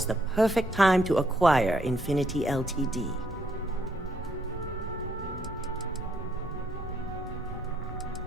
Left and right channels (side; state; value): both; normal; correlation 0.71